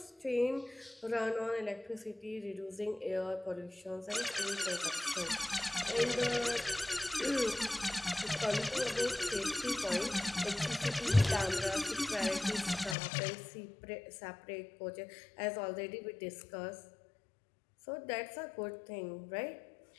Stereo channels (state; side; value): drops out; right; at 13.0 s